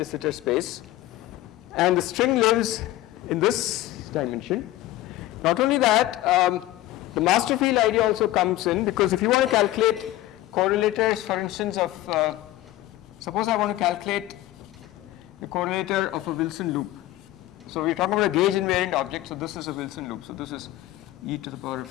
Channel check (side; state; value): right; quieter; 15.6 dB